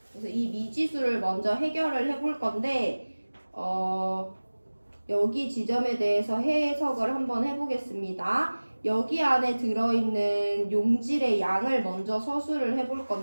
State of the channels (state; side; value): inverted; both; correlation -1.00